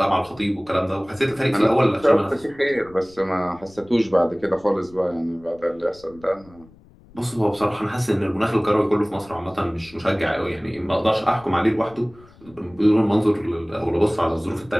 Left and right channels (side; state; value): left; noise; rumble, 25 dB below the sound